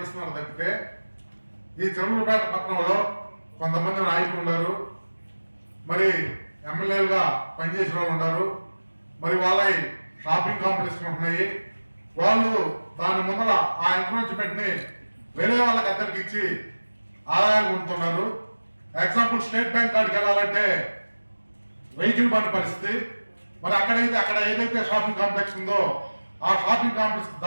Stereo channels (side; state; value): both; inverted; correlation -1.00